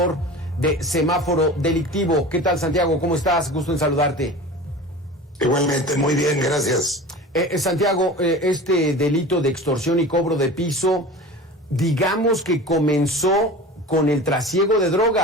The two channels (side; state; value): both; normal; correlation 0.35